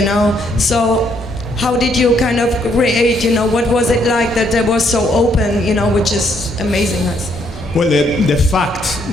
know? So how did you kind of create, you know, what was it like that they were so open, you know, which is amazing. Well, the fact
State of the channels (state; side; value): normal; both; correlation 0.70